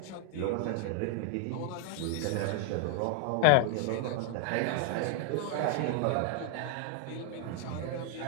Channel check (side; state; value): both; different; correlation 0.00